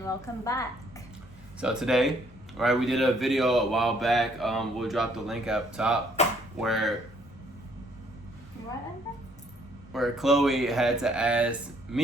welcome back. So today, right, we did a video a while back. We'll drop the link up top where Chloe had to ask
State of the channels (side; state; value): left; noise; rumble, 25 dB below the sound